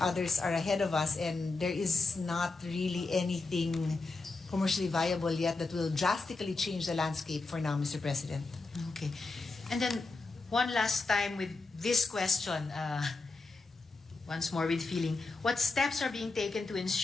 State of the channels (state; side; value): quieter; right; 3.6 dB